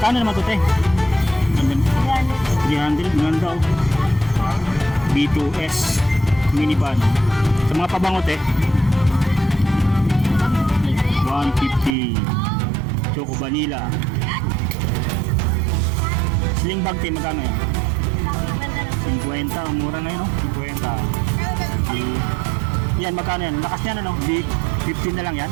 naman ito, te? 300. Ganda, oh. B2S minivan. Sa mga pabango, te, 150. Choco Vanilla. Sling bag, te, magkano yan? 50. Mura na yun, no? 50. Yan, magkano yan? Lakas niya na, no? 15 na lang yan.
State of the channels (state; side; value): drops out; left; at 12.0 s